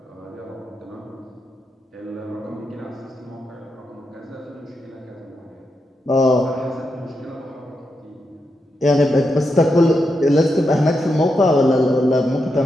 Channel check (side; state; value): both; normal; correlation 0.85